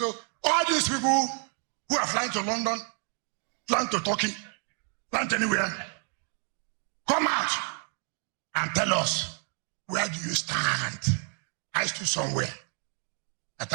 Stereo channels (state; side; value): quieter; left; 40.0 dB